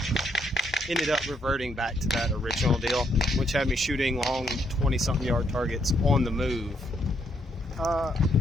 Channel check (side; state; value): both; normal; correlation 0.74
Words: ended up reverting back to that original deal, which had me shooting long 20-something yard targets on the move.